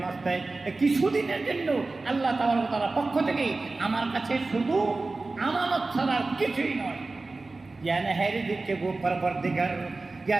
মাস্ত। কিছুদিনের জন্য আল্লাহ তাআলার পক্ষ থেকে আমার কাছে শুধু আমানত ছাড়া কিছুই নয়। या नहर के वो परवरदिगार, या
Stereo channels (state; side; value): quieter; left; 3.5 dB